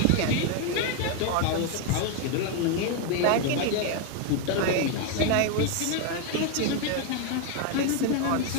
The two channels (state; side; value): different; both; correlation 0.01